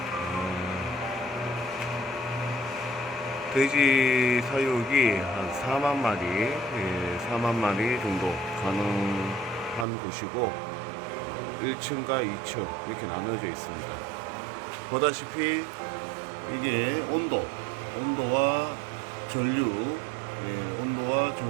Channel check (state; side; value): drops out; left; at 9.9 s